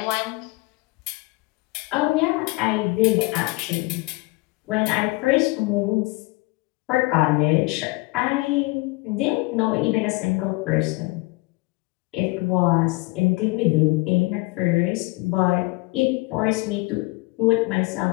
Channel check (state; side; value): quieter; right; 24.5 dB